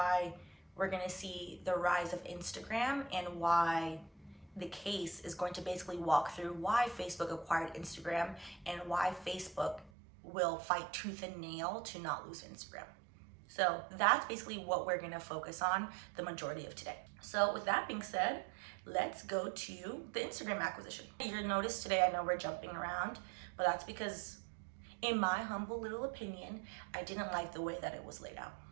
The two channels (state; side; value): drops out; left; at 9.9 s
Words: we're going to see the rise of Instagram and why the case is going to basically walk through why Facebook acquired Instagram and why Facebook will fight tooth and nail to not lose Instagram. So that's basically what we're going to focus on the majority of today. So with that being said, let's go to the Instagram acquisition. You'll notice today, I know we're jumping around, but that's because in my humble little opinion, I didn't like the way that it was laid out.